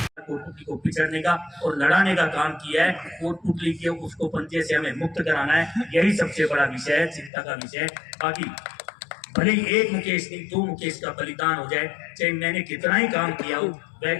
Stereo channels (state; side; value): drops out; right; at 7.3 s